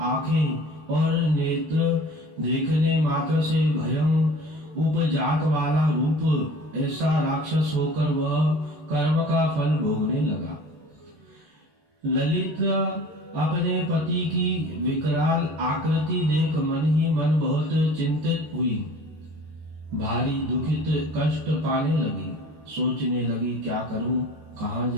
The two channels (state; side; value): late; left; 14 ms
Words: आंखें और नेत्र, देखने मात्र से भयं उपजात वाला रूप, ऐसा राक्षस होकर वह कर्म का फल भोगने लगा। ललित अपने पति की विकराल आकृति देख मन ही मन बहुत चिंतित हुई। भारी दुखित कष्ट पाने लगी। सोचने लगी, क्या करूं, कहां